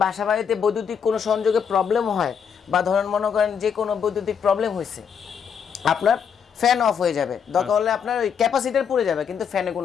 বাসা বাড়িতে বৈদ্যুতিক কোনো সংযোগে প্রবলেম হয়, বা ধরেন মনে করেন যে কোনো বৈদ্যুতিক প্রবলেম হয়েছে, আপনার ফ্যান অফ হয়ে যাবে, দরকার হলে আপনার ওই ক্যাপাসিটর পুড়ে যাবে, কিন্তু ফ্যানে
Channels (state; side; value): quieter; right; 7.2 dB